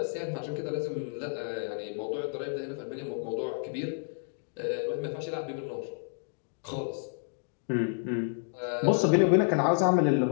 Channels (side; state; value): right; silent; digital silence